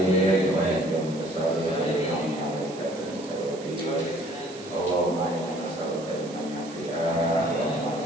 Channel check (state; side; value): noise; right; hiss, 17 dB below the sound